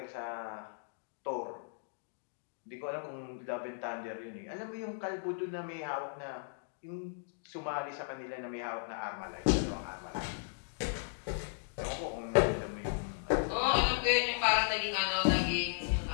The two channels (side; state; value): right; silent; digital silence